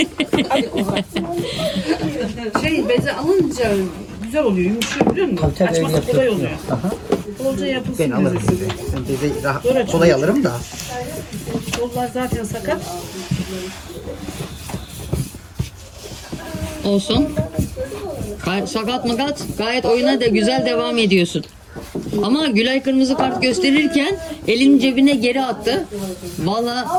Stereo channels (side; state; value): both; identical; correlation 1.00